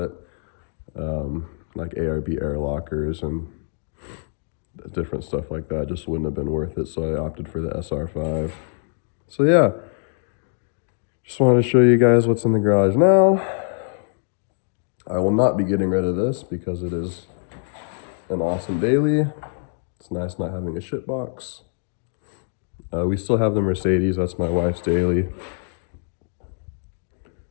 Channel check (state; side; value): silent; right; digital silence